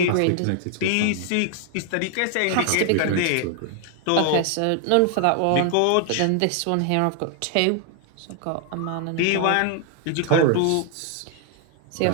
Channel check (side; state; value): both; different; correlation 0.00